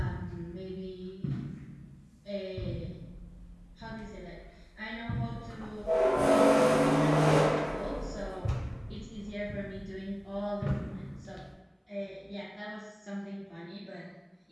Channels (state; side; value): identical; both; correlation 1.00